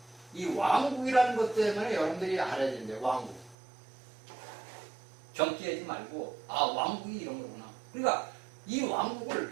이 왕국이라는 것 때문에 여러분들이 알아야 된대요. 왕국. 경기하지 말고 왕국이 이런 거구나. 그러니까 이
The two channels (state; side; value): drops out; left; at 3.6 s